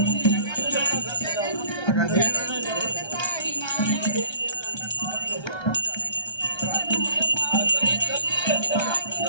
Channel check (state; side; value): late; right; 1.3 ms